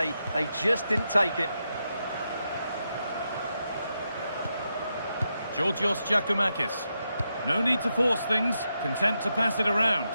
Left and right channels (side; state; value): both; inverted; correlation -0.85